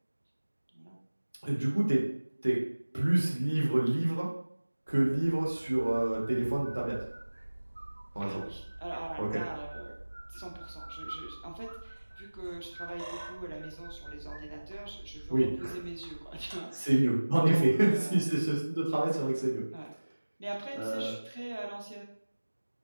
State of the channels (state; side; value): inverted; both; correlation -1.00